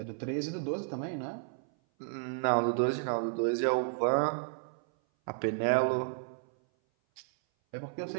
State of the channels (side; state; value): left; silent; 56 dB below the other